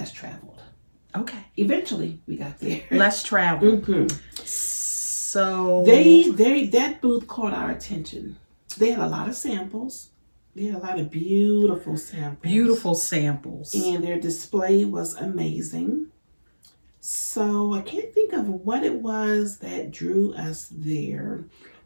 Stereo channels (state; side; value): inverted; both; correlation -1.00